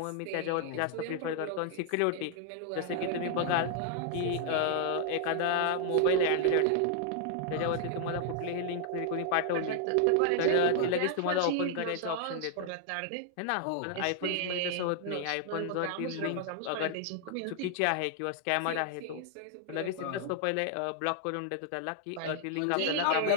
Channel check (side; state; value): both; different; correlation 0.00